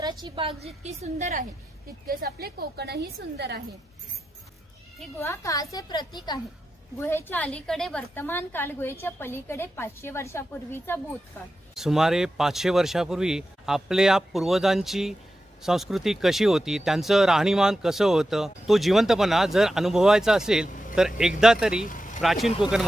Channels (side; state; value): both; normal; correlation 0.90